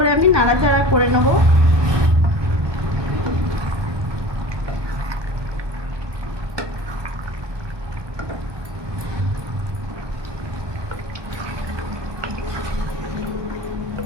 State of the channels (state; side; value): late; left; 1.2 ms